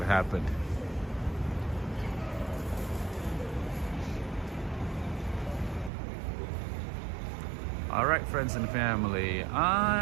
happened. All right, friends and family,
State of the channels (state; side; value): drops out; left; at 5.9 s